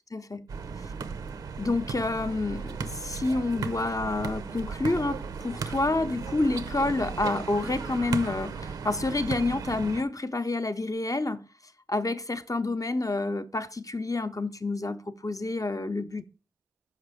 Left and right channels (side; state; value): both; normal; correlation 0.78